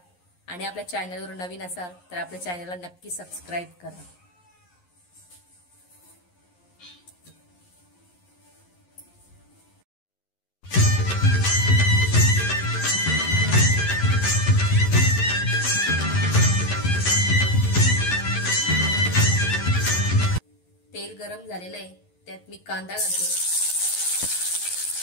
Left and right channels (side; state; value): right; late; 11 ms